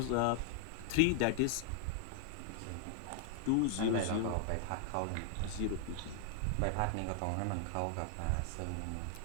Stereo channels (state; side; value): different; both; correlation 0.00